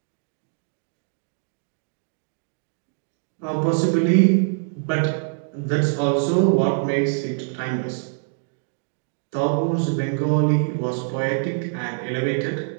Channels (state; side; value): silent; left; digital silence